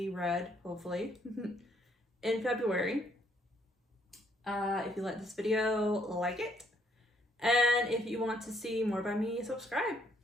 read, hopefully, in February. If you like this video, like it. And if you want to see more by me, subscribe.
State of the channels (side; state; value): both; normal; correlation 0.68